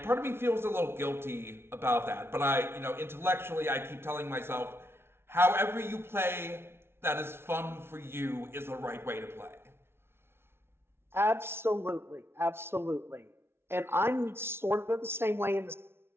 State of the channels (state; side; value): late; left; 0.12 ms